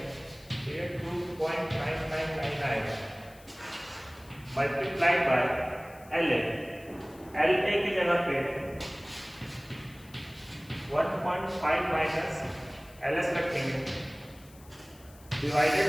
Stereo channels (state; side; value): noise; left; hiss, 24 dB below the sound